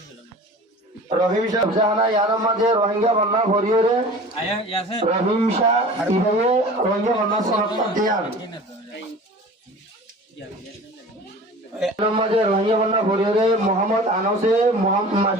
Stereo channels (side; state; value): both; normal; correlation 0.40